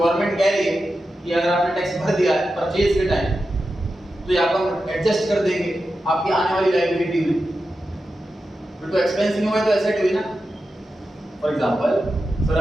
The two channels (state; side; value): normal; both; correlation 0.91